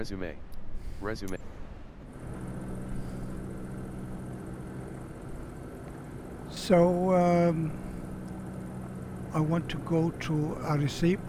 Resume. So I want to go to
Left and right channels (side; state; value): both; identical; correlation 1.00